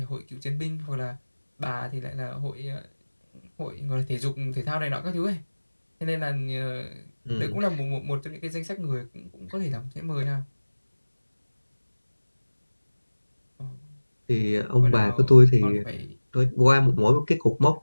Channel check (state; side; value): inverted; both; correlation -1.00